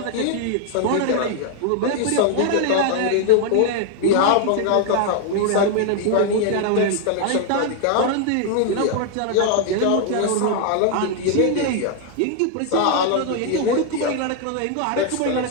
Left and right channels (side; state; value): both; different; correlation 0.00